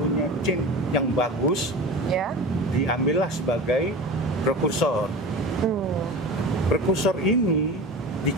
chain yang bagus, Ya. diambillah sebagai prekursor. Prekursor ini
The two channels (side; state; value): both; normal; correlation 0.32